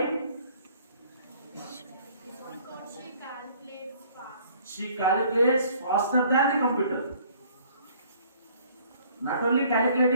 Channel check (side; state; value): both; inverted; correlation -0.58